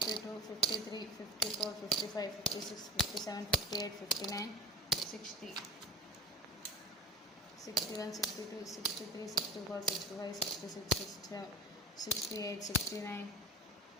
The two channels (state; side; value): normal; both; correlation 0.34